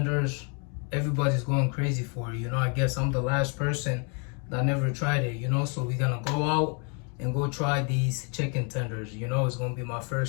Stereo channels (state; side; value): quieter; right; 36.9 dB